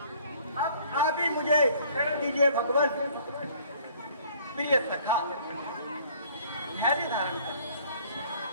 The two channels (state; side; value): inverted; both; correlation -0.55